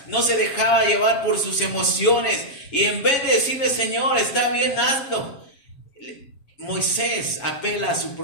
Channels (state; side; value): late; right; 7.1 ms